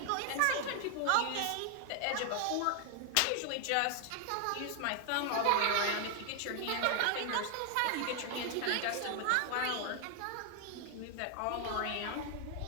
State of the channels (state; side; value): different; both; correlation 0.00